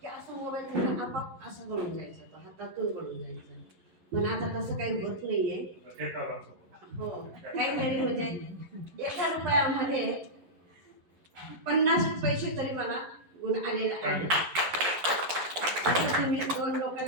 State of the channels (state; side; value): late; left; 11 ms